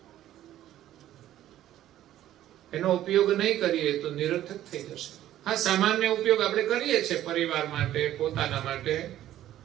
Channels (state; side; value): quieter; left; 12.8 dB